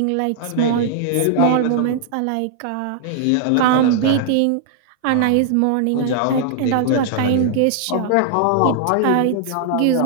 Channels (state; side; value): different; both; correlation -0.01